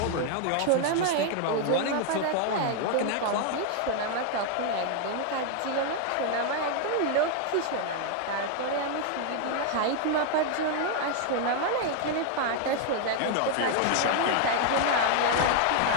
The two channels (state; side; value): different; both; correlation 0.00